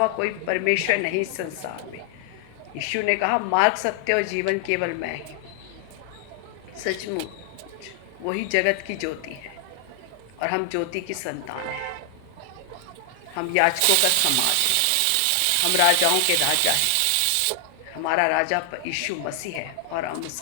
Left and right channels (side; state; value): both; different; correlation 0.00